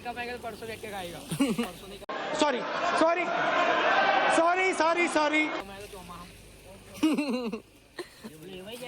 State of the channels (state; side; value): identical; both; correlation 1.00